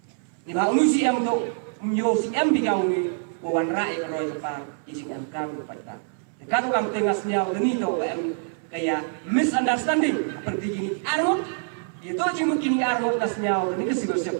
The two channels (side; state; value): left; silent; 62 dB below the other